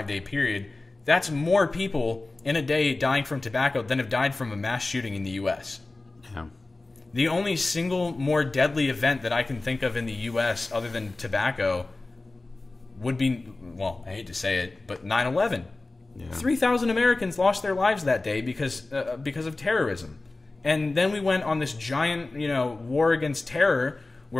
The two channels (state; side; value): quieter; right; 3.2 dB